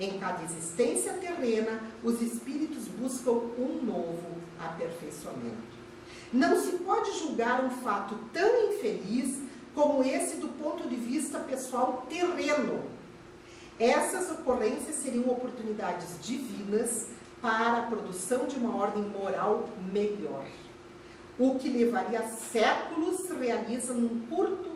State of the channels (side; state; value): both; identical; correlation 1.00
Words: cada existência terrena, os espíritos buscam um novo aperfeiçoamento. Não se pode julgar um fato tão infeliz como esse do ponto de vista pessoal terreno. Essas ocorrências seriam oportunidades divinas para a produção de uma ordem moral melhor. O que levaria séculos se realiza num